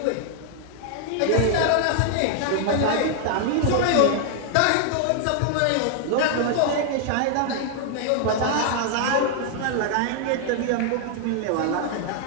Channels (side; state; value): both; different; correlation 0.00